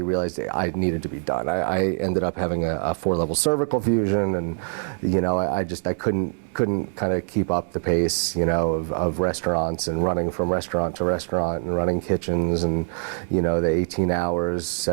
realized I needed to be done. I ended up having a 4-level cervical fusion, and I couldn't kind of keep up the pace of restaurants, and running from restaurant to restaurant, and running kitchens, and the 18 hours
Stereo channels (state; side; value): silent; left; digital silence